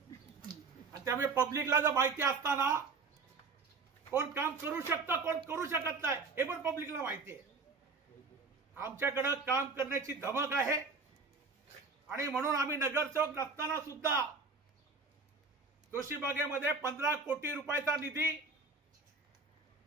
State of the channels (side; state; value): left; quieter; 4.3 dB